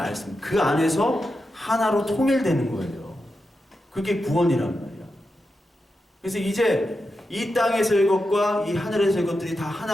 그 안에서 하나로 통일되는 거예요. 그게 구원이란 말이야. 그래서 이제 이 땅에서의 것과 이 하늘에서의 것들이 다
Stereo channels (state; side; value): normal; both; correlation 0.88